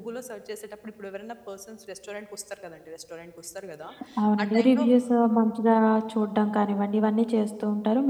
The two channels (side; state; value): both; identical; correlation 1.00